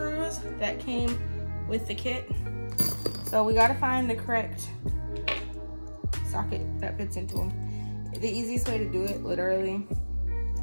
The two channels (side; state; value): both; inverted; correlation -1.00